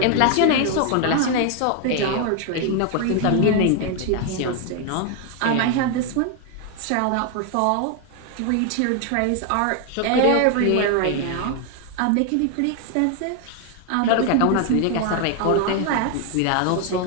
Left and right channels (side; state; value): both; different; correlation 0.01